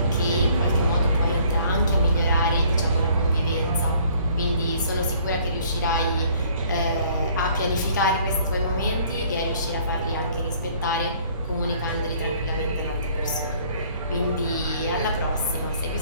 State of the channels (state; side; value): inverted; both; correlation -0.58